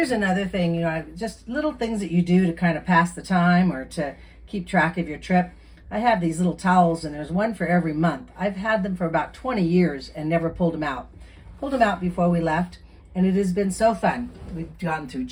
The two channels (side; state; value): both; identical; correlation 1.00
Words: another thing, just little things that you do to kind of pass the time or to keep track of your trip. I have these little towels, and there's one for every month. I've had them for about 20 years and never pulled them out. Pulled them out before we left, and it has been so fun. We've gone through